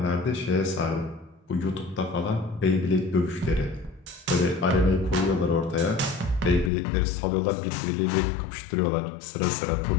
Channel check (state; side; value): drops out; right; at 6.7 s